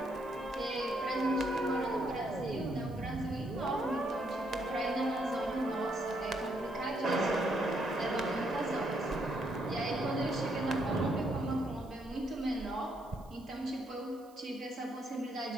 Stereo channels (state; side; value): noise; right; hiss, 28 dB below the sound